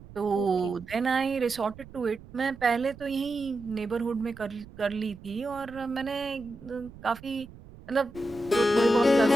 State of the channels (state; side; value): noise; right; rumble, 19 dB below the sound